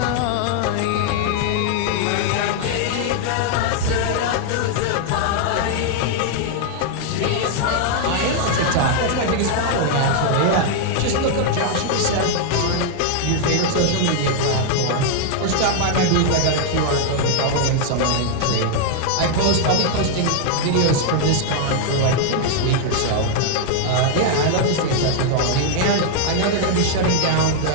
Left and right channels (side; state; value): both; different; correlation 0.00